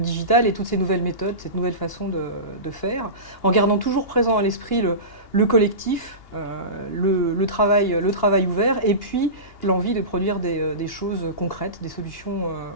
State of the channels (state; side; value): late; right; 2.8 ms